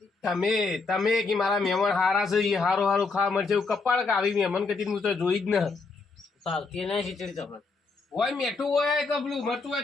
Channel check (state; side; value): quieter; right; 4.1 dB